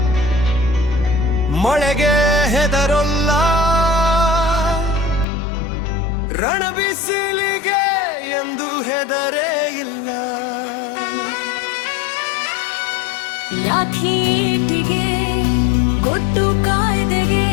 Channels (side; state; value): right; drops out; at 5.2 s